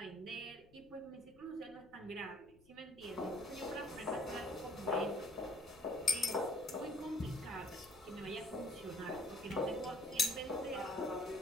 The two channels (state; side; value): noise; left; rumble, 27 dB below the sound